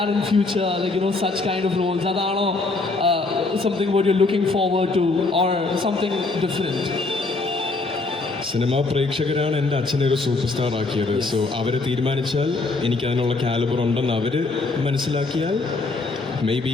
in future? Like, you know, such kind of roles? Adano, something what you're looking forward to, or something different? Cinema പ്രേക്ഷകരാണ് എൻ്റെ അച്ഛനെ ഒരു സൂപ്പർ സ്റ്റാർ ആക്കിയത്. സോ അവർ തീരുമാനിച്ചാൽ എനിക്ക് അതിനുള്ള കാലിബർ ഉണ്ടെന്ന് അവർ മനസ്സിലാക്കിയാൽ മേ ബി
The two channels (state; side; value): quieter; right; 3.5 dB